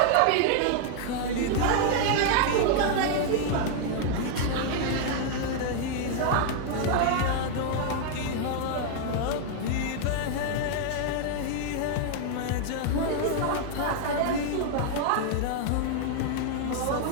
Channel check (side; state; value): both; different; correlation 0.00